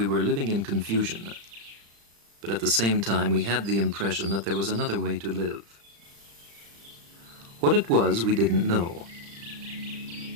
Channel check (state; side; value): late; left; 35 ms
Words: were living in confusion, but at the same time we had the impression that there was another way to live. What it was we didn't know,